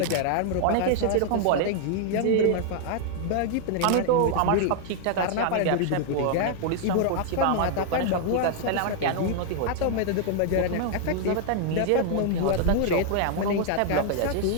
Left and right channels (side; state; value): both; different; correlation 0.00